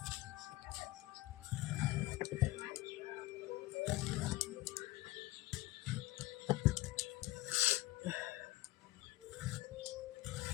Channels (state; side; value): quieter; right; 17.8 dB